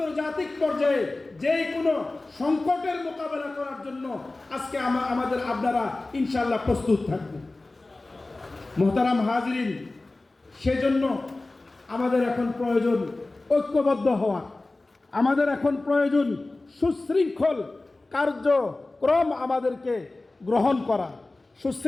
পর্যায়ে যে কোনো সংকটের মোকাবেলা করার জন্য আজকে আমাদের আপনারা ইনশাআল্লাহ প্রস্তুত থাকবেন। মুহতারাম হাজিরিন, সেজন্য আমাদের এখন প্রয়োজন ঐক্যবদ্ধ হওয়া, আমাদের এখন প্রয়োজন সুশৃঙ্খল কার্যক্রম আমাদেরকে গ্রহণ করা।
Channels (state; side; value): quieter; right; 3.1 dB